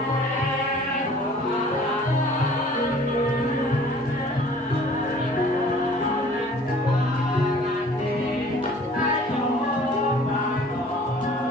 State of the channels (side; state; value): both; normal; correlation 0.51